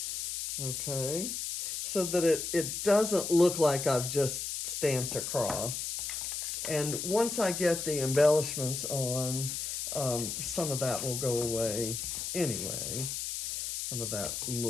Okay, so that it doesn't look like I've just stamped across. And once I get the embellishments on, some of that will go away anyway. Some of that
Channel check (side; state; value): left; noise; hiss, 4 dB below the sound